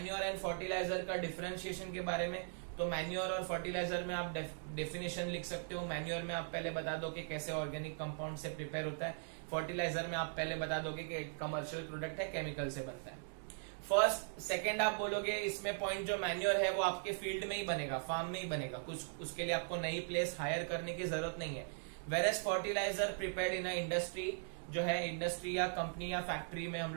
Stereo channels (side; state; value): left; silent; digital silence